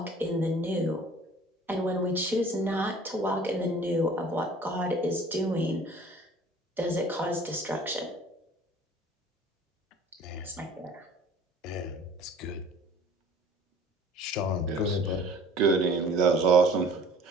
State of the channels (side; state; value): both; normal; correlation 0.49